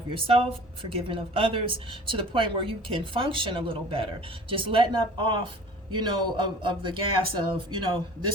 yourself, forgiving of others, to the point where you can function a little better. Just letting up off, you know, of the gas of, you know,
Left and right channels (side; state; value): both; normal; correlation 0.44